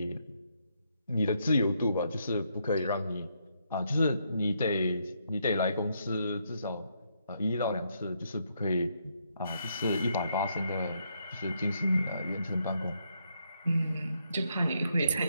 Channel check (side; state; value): both; inverted; correlation -0.76